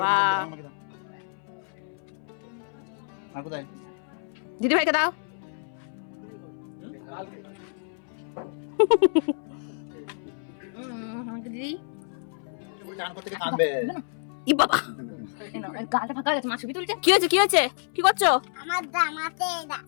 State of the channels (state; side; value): silent; right; 59 dB below the other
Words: আর কোথায় দিদি ভাইকে দাও দিদি চান করতে গিয়ে কাঁদবে ই বাবা গালটা ফাঁকা হয়ে গেছে, মা ছবি তুলছে। কি হয়েছে কি হয়েছে কি করছো আমার জামাতে